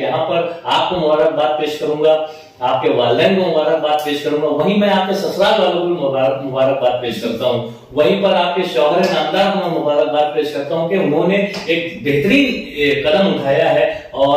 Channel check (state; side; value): identical; both; correlation 1.00